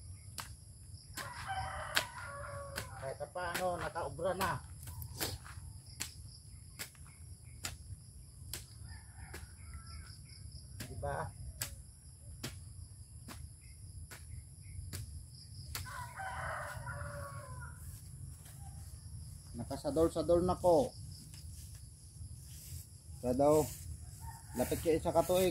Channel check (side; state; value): both; identical; correlation 1.00